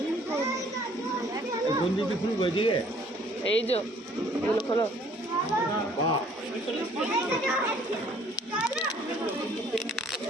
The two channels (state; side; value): normal; both; correlation 0.58